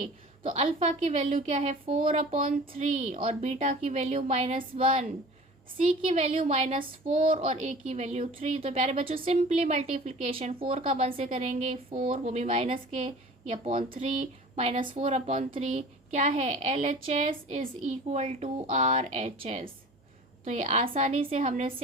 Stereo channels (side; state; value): both; normal; correlation 0.42